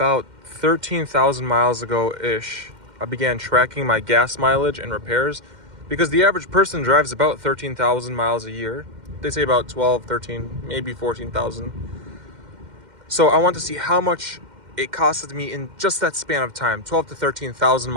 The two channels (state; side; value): late; left; 2.1 ms